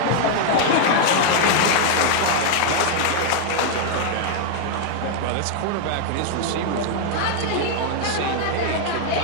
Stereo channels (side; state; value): both; different; correlation 0.00